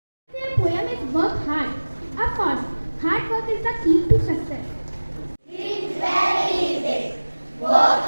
Their poem is work hard. Of course, hard work is the key to success. Dream very big. Work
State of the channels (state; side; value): inverted; both; correlation -1.00